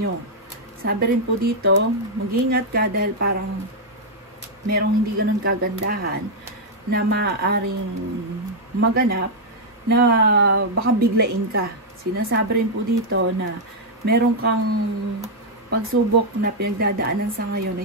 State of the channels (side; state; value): both; normal; correlation -0.03